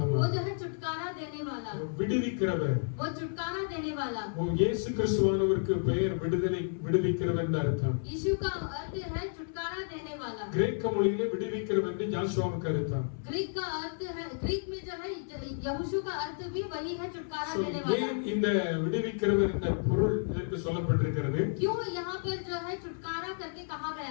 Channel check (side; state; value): right; silent; 57 dB below the other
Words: वो जो है छुटकारा देने वाला. விடுவிக்கிறவர். वो छुटकारा देने वाला. वो இயேசு கிறிஸ்துவானவருக்கு பெயர் விடுவிக்கிறவர் என்ற அர்த்தம். यीशु का अर्थ है छुटकारा देने वाला. கிரேக்க மொழியிலே விடுவிக்கிறவர் என்று ஜோஷுவாவுக்கு அர்த்தம். ग्रीक का अर्थ है, ग्रीक में जो है यहोशू का अर्थ भी वही है, छुटकारा देने वाला. ஏன் இந்த விடுவிக்கிறவர் என்ற பொருள் இதற்கு சொல்லப்பட்டிருக்கிறது? क्यों यहाँ पर जो है छुटकारा करके कहा